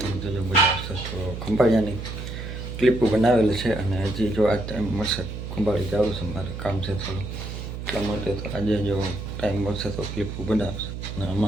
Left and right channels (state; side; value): noise; right; hum, 7 dB below the sound